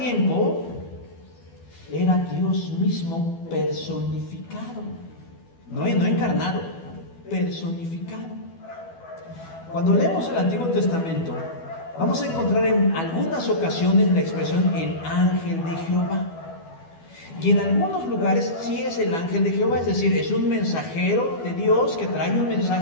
era Dios mismo personificado, no encarnado, personificado. Cuando leemos el Antiguo Testamento, vamos a encontrar en algunas ocasiones la expresión el ángel de Jehová. Y en algunos lugares sí es el ángel de Jehová, es decir, es un mensajero de Dios que trae un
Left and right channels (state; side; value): late; right; 12 ms